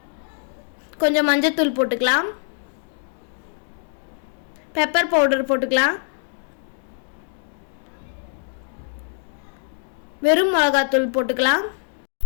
கொஞ்சம் மஞ்சத்தூள் போட்டுக்கலாம், பெப்பர் பவுடர் போட்டுக்கலாம், வெறும் மிளகாத்தூள் போட்டுக்கலாம்.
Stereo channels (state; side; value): silent; right; 62 dB below the other